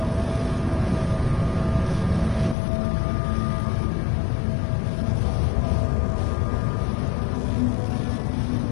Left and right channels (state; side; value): drops out; right; at 2.6 s